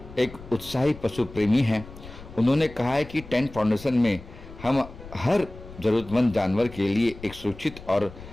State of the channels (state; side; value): noise; left; rumble, 16 dB below the sound